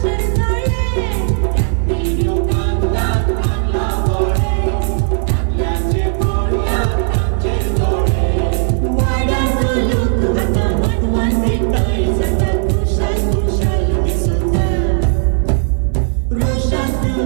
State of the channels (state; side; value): silent; left; 68 dB below the other